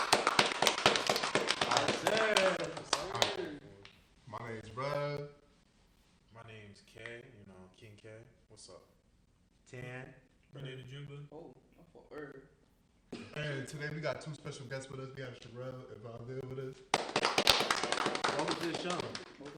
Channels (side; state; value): both; identical; correlation 1.00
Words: My name's Brad. My name's K, King K. What's up? Tan. Renee the Jimba. Oh, I'm for Herb. And today we got two special guests with us. We have Cherrell and Valdez with us. Welcome to the show.